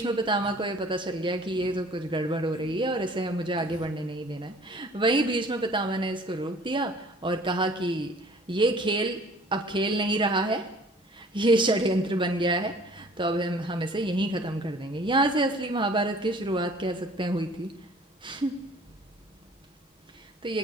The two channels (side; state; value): both; normal; correlation 0.51